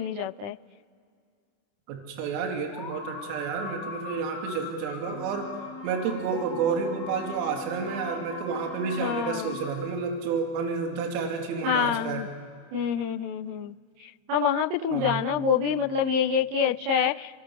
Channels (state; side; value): late; left; 30 ms